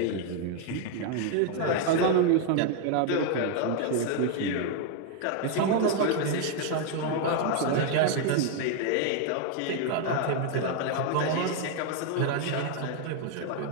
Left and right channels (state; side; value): different; both; correlation 0.00